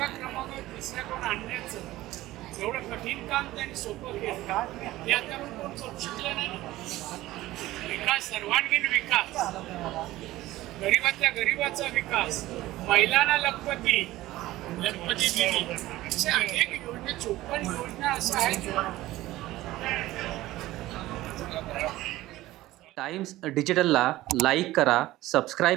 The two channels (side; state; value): left; quieter; 16.7 dB